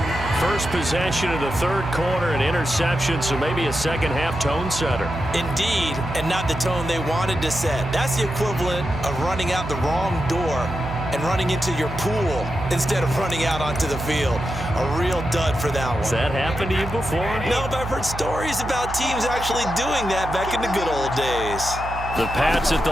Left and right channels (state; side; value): noise; right; hum, 9 dB below the sound